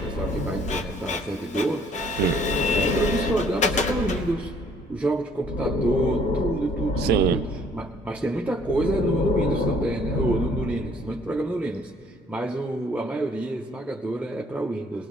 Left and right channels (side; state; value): both; normal; correlation 0.61